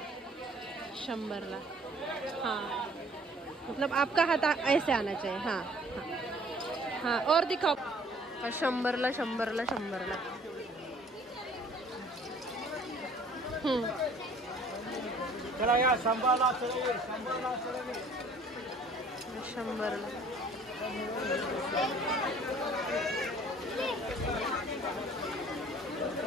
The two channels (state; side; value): normal; both; correlation 0.54